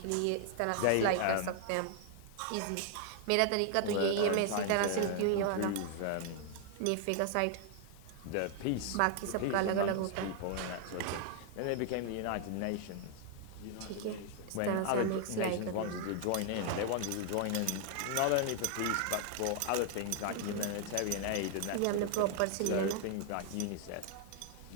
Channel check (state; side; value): different; both; correlation 0.00